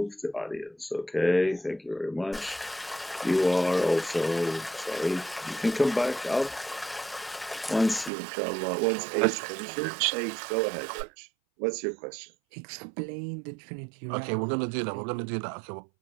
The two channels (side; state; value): left; drops out; at 8.1 s